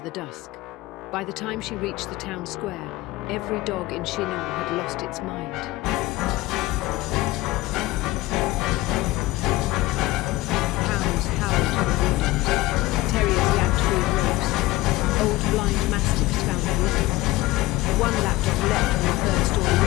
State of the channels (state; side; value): quieter; right; 18.6 dB